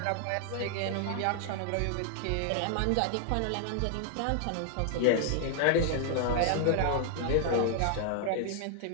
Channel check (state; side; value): different; both; correlation 0.00